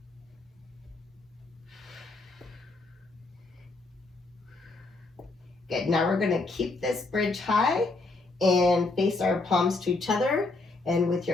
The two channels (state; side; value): quieter; right; 3.3 dB